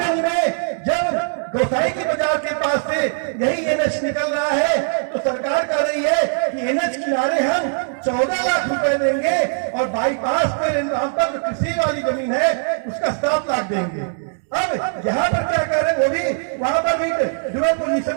में जब गोसाई की बाजार के पास से यही एनएच निकल रहा है तो सरकार कह रही है कि एनएच किनारे हम 14 लाख रुपए देंगे और बाईपास पे नाम पर जो कृषि वाली जमीन है उसका 7 लाख देंगे। अब यहाँ पर क्या कर रहे हैं, वो भी वहां पर भी ड्यूअल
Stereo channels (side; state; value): left; silent; digital silence